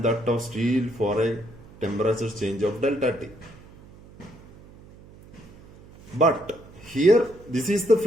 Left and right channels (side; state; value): right; noise; hum, 22 dB below the sound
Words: that of steel for a temperature change of delta T. But here, this is the